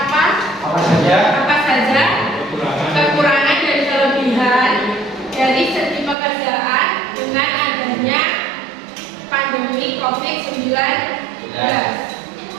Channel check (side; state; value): left; drops out; at 6.2 s